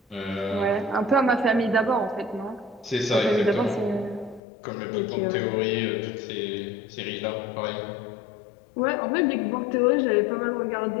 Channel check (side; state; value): right; drops out; at 4.4 s